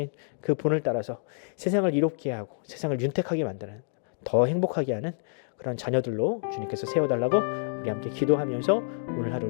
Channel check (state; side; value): silent; right; 59 dB below the other